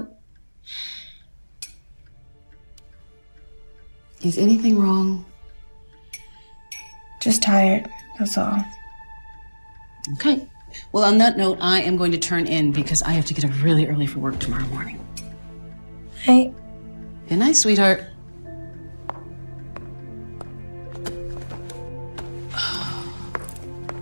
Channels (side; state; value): both; inverted; correlation -1.00